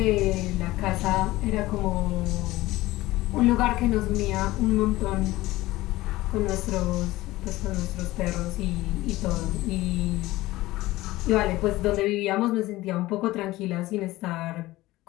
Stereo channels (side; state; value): right; quieter; 18.0 dB